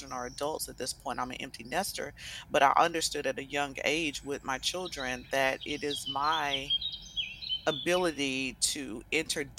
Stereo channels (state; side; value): identical; both; correlation 1.00